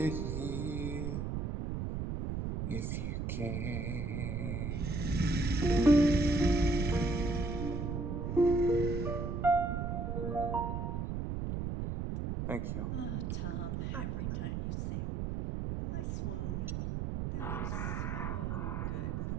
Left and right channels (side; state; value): right; noise; rumble, 2 dB below the sound